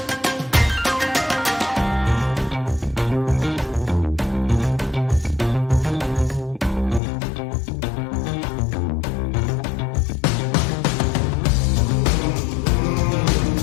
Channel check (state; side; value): drops out; right; at 7.0 s